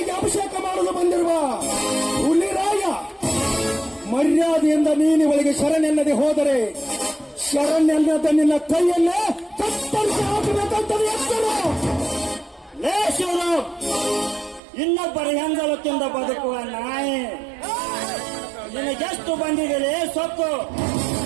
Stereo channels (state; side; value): drops out; left; at 14.6 s